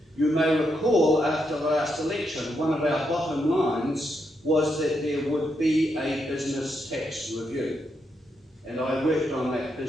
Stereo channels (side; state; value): both; normal; correlation 0.81